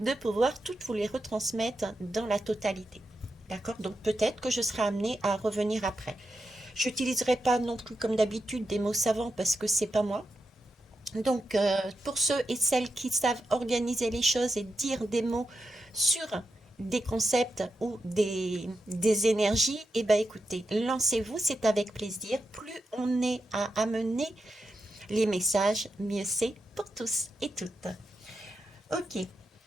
pouvoir toutes vous les retransmettre dans la totalité. D'accord? Donc peut-être que je serai amenée à revenir après. Je n'utiliserai pas non plus comme d'habitude des mots savants parce que c'est pas moi. Donc pour ceux et celles qui savent organiser les choses et dire des mots sur des concepts ou des énergies, eh ben écoutez, lancez-vous, c'est avec plaisir. Plus on est à amener les messages, mieux c'est pour tous et toutes. Ok.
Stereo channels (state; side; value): normal; both; correlation 0.88